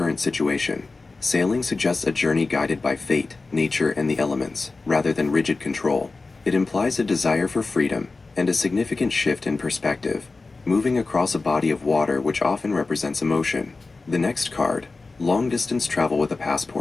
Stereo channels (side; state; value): right; quieter; 3.7 dB